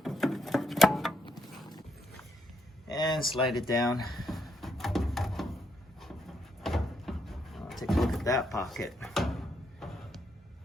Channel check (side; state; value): both; normal; correlation 0.76